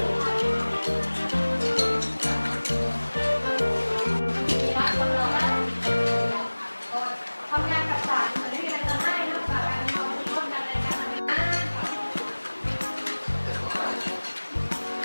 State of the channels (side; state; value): both; inverted; correlation -1.00